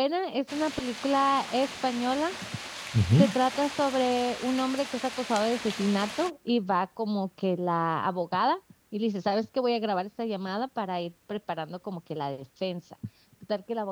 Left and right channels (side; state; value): both; identical; correlation 1.00